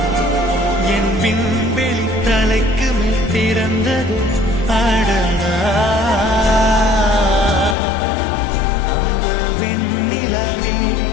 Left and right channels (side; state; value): right; drops out; at 7.8 s